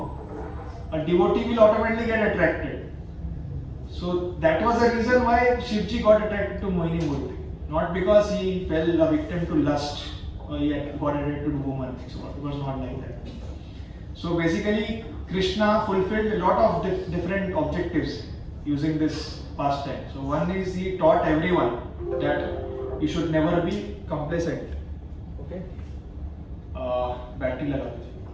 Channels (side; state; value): both; identical; correlation 1.00